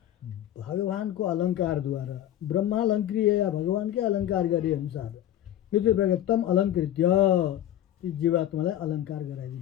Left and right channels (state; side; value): quieter; right; 12.1 dB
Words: भगवानको अलङ्कारद्वारा ब्रह्मालङ्कृय या भगवानकै अलङ्कार गरे अनुसार यति प्रकार तम अलङ्कृत्य ती जीवात्मालाई अलङ्कार